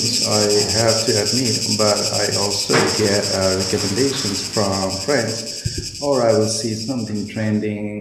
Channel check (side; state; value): both; identical; correlation 1.00